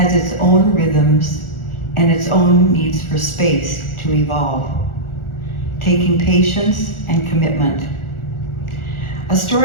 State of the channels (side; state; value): right; late; 1.4 ms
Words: its own rhythms and its own needs for space to evolve, taking patience and commitment. A